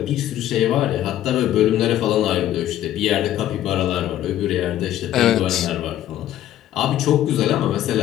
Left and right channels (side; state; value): right; quieter; 12.4 dB